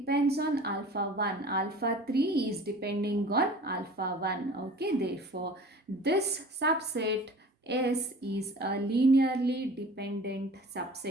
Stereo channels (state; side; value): normal; both; correlation 0.43